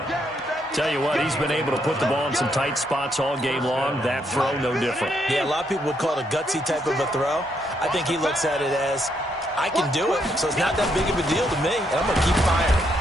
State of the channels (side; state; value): both; normal; correlation 0.76